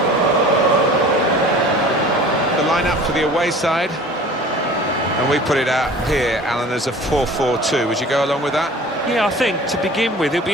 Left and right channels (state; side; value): normal; both; correlation 0.44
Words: The lineup for the away side. And we put it out here, Alan, as a 4-4-2. Would you go along with that? Yeah, I think to begin with, it'll